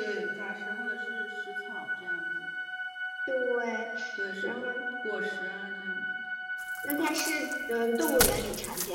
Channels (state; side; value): identical; both; correlation 1.00